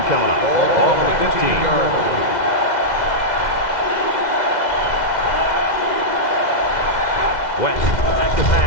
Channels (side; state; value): right; late; 2.1 ms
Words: coming up. Ball on the 15. West, back to